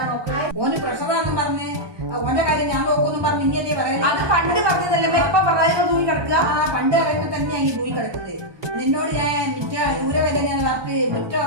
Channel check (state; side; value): late; left; 1.2 ms